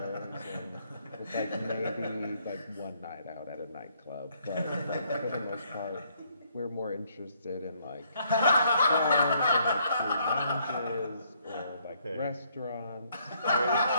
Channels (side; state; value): both; inverted; correlation -0.69